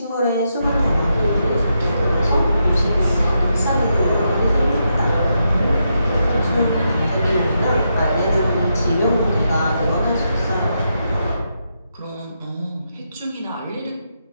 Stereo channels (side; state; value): both; inverted; correlation -0.83